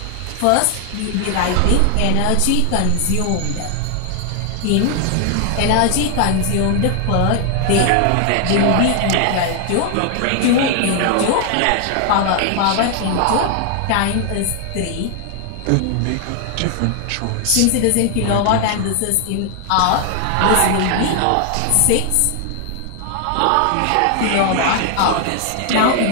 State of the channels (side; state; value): both; different; correlation 0.00